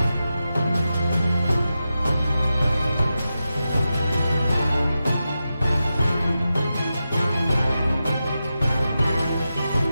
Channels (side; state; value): both; inverted; correlation -0.90